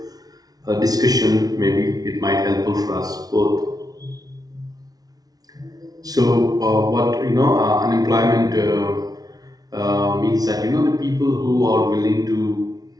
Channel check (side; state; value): left; late; 0.18 ms